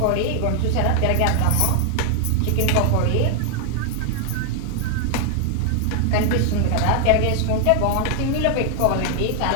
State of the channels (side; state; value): both; different; correlation 0.00